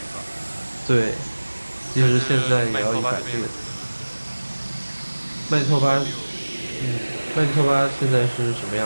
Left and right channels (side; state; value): both; inverted; correlation -1.00